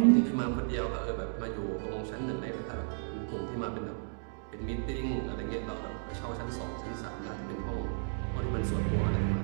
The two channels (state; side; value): silent; left; digital silence